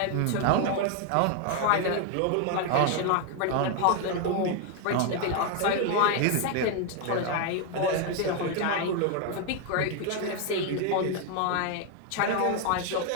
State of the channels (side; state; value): both; different; correlation 0.01